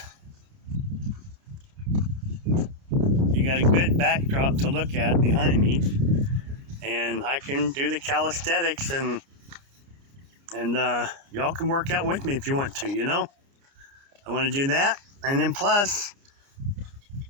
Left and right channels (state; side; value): late; left; 29 ms